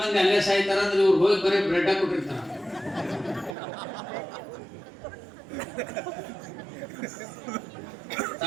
ಮಂದಿ ಅಲ್ಲೇ ಸಾಯ್ತಾರ ಅಂದ್ರೆ ಇವ್ರು ಹೋಗಿ ಬರೀ ಬ್ರೆಡ್ ಕೊಟ್ಟಿರ್ತಾರ.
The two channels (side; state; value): left; drops out; at 3.6 s